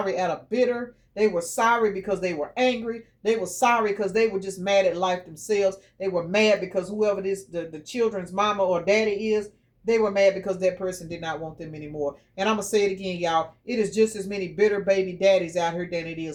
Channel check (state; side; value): identical; both; correlation 1.00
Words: out of bitter. They were sorry because they were angry. They were sorry because they were just mad at life themselves. They were mad because whoever this the children's mama or daddy is, they were mad because that person did not want them anymore. And I'm going to say it again, y'all. It is just as many bitter baby daddies out here than it